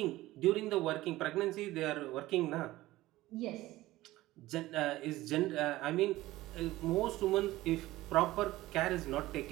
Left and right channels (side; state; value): left; quieter; 17.1 dB